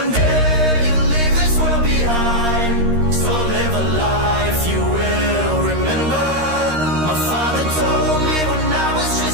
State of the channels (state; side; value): late; left; 13 ms